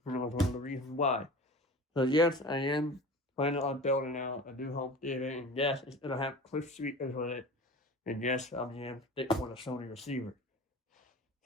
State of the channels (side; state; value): both; normal; correlation 0.36